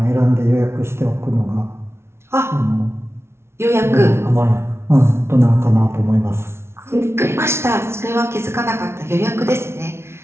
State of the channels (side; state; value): left; late; 0.12 ms